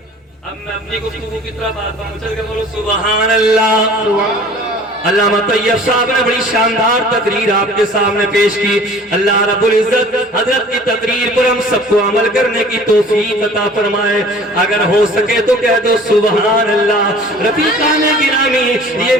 अब मैं अपनी गुफ्तगू की तरफ आता हूं, चल के बोलो सुभान अल्लाह। अल्लामा तैयब साहब ने बड़ी शानदार तकरीर आपके सामने पेश की। अल्लाह रब्बुल इज्जत हजरत की तकरीर पर हम सबको अमल करने की तौफीक अता फरमाए। अगर हो सके तो कह दो सुभान अल्लाह। रफीकान गिरामी,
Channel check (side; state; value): both; normal; correlation 0.47